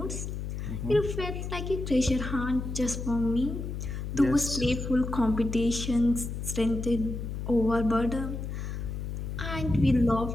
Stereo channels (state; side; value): noise; left; hum, 5 dB below the sound